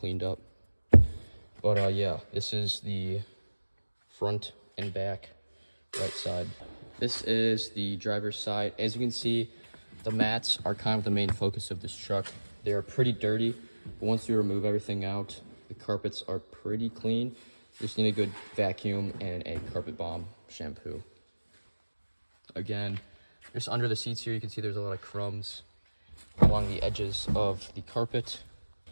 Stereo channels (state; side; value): inverted; both; correlation -1.00